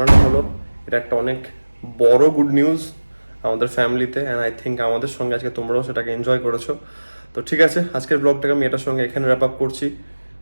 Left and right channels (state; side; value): inverted; both; correlation -1.00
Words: হলো। এটা একটা অনেক বড় গুড নিউজ আমাদের ফ্যামিলিতে, অ্যান্ড আই থিঙ্ক আমাদের সঙ্গে আজকে তোমরাও সেটাকে এনজয় করেছো। তো ঠিক আছে, আজকের ব্লগটাকে আমি এটার সঙ্গে এখানে র্যাপ আপ করছি।